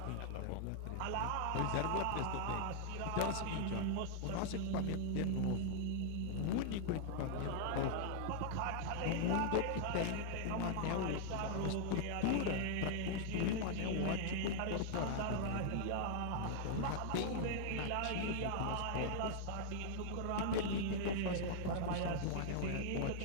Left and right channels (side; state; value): both; different; correlation -0.01